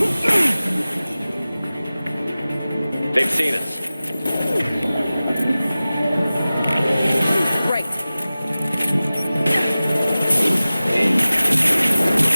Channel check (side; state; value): both; inverted; correlation -0.97